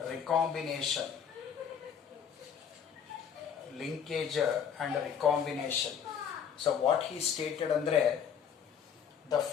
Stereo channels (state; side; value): quieter; right; 7.8 dB